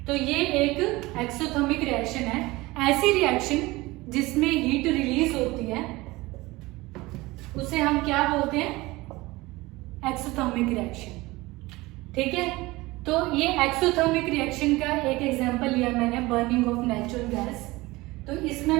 तो ये एक एक्सोथर्मिक रिएक्शन है. ऐसी रिएक्शन जिसमें हीट रिलीज होती है उसे हम क्या बोलते हैं, एक्सोथर्मिक रिएक्शन. ठीक है, तो ये एक्सोथर्मिक रिएक्शन का एक एग्जांपल लिया मैंने बर्निंग ऑफ नेचुरल गैस. तो इसमें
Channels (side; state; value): left; quieter; 20.8 dB